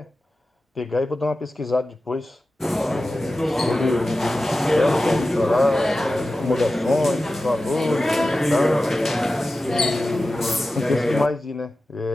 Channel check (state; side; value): normal; both; correlation 0.94